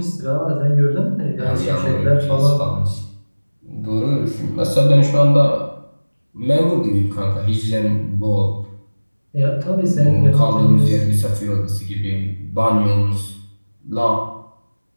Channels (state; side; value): inverted; both; correlation -1.00